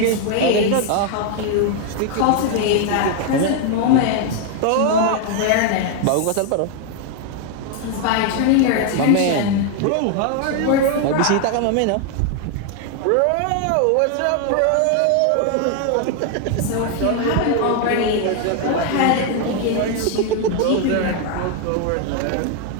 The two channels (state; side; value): different; both; correlation 0.01